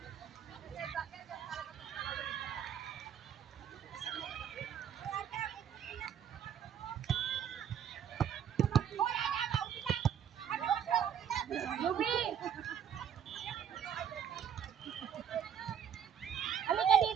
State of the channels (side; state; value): left; quieter; 8.7 dB